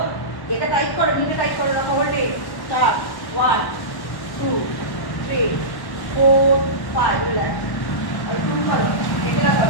এটা টাইট করো নিচে টাইট করে রাখো হোল্ডে স্টার্ট 1 2 3 4 5 রিল্যাক্স আর 2 করো একলা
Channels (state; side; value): late; right; 1.1 ms